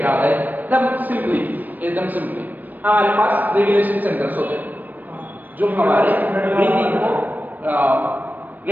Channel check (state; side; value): late; left; 0.085 ms